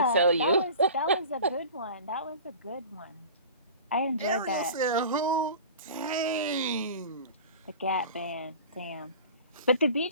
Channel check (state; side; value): inverted; both; correlation -0.38